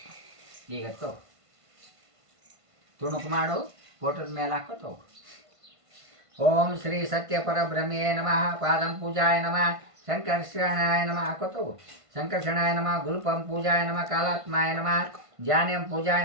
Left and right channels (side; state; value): left; late; 1.5 ms